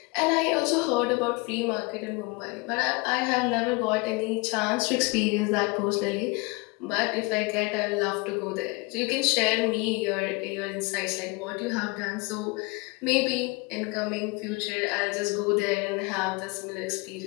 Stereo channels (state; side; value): quieter; right; 27.4 dB